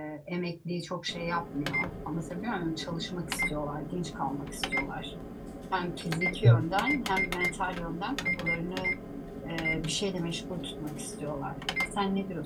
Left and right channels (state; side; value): identical; both; correlation 1.00